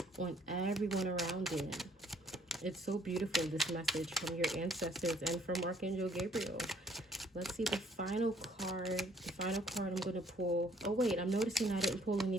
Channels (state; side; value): normal; both; correlation 0.62